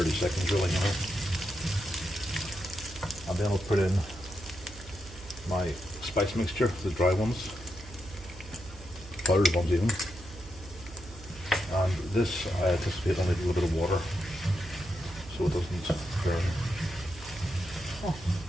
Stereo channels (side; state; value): right; noise; hum, 16 dB below the sound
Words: seconds really now. And then I'll put in my spice mixture, the dry ones, powdered ones even. And this I anticipate only a little bit of water so it doesn't burn. Oh,